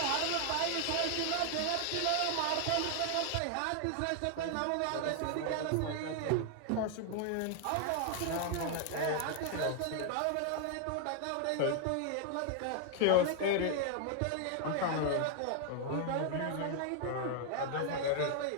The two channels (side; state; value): both; different; correlation 0.00